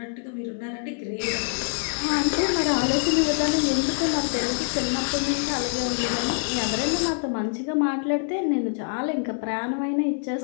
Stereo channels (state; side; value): silent; right; digital silence